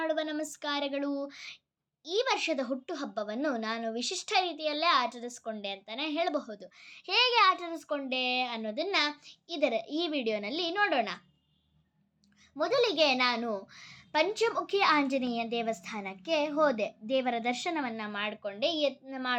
ನಮಸ್ಕಾರಗಳು. ಈ ವರ್ಷದ ಹುಟ್ಟುಹಬ್ಬವನ್ನು ನಾನು ವಿಶಿಷ್ಟ ರೀತಿಯಲ್ಲೇ ಆಚರಿಸ್ಕೊಂಡೆ ಅಂತಲೇ ಹೇಳಬಹುದು. ಹೇಗೆ ಆಚರಿಸ್ಕೊಂಡೆ ಅನ್ನೋದನ್ನು ಈ ವಿಡಿಯೋನಲ್ಲಿ ನೋಡೋಣ. ಮೊದಲಿಗೆ ನಾನು ಪಂಚಮುಖಿ ಆಂಜನೇಯ ದೇವಸ್ಥಾನಕ್ಕೆ ಹೋದೆ. ದೇವರ ದರ್ಶನವನ್ನು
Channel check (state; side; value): identical; both; correlation 1.00